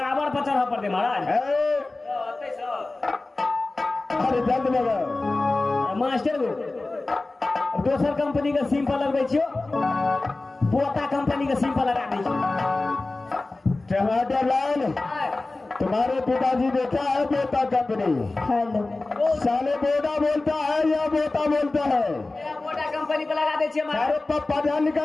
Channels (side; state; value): right; quieter; 3.1 dB